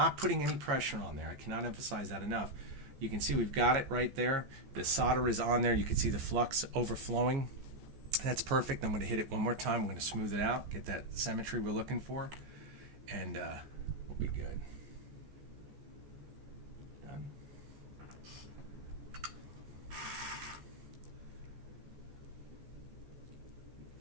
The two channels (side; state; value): left; late; 14 ms